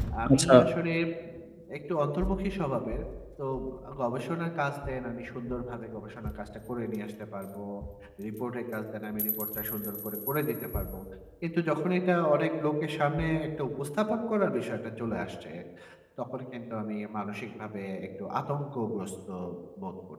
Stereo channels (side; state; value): both; identical; correlation 1.00